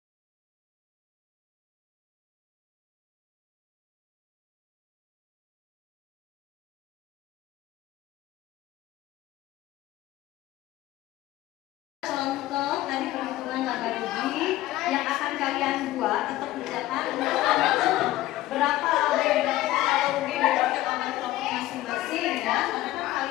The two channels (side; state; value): right; quieter; 15.9 dB